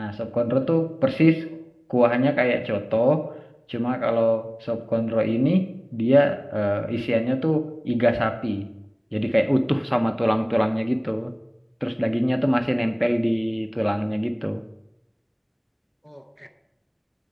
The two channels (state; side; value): identical; both; correlation 1.00